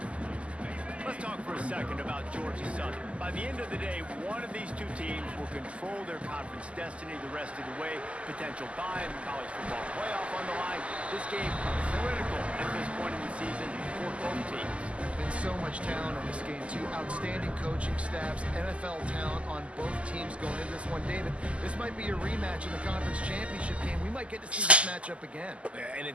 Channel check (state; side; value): late; left; 0.058 ms